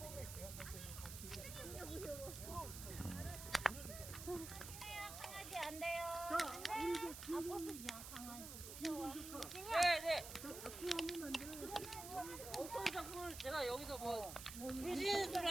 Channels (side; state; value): right; noise; hiss, 9 dB below the sound